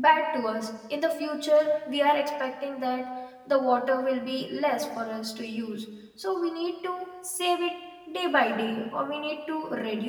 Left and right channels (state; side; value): identical; both; correlation 1.00